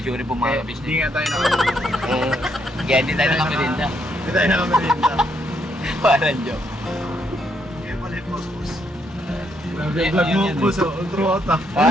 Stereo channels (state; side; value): normal; both; correlation 0.75